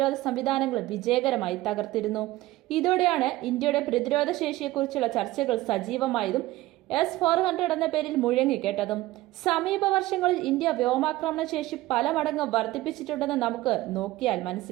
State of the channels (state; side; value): quieter; left; 17.5 dB